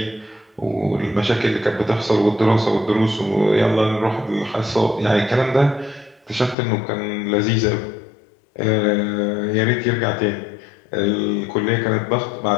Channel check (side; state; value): right; drops out; at 6.6 s